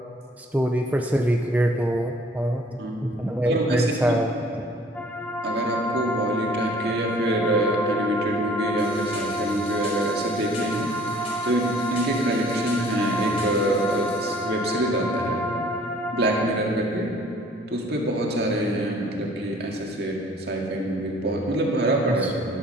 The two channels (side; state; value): both; normal; correlation 0.55